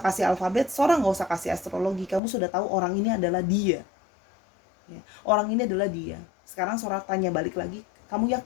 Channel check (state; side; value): drops out; right; at 2.2 s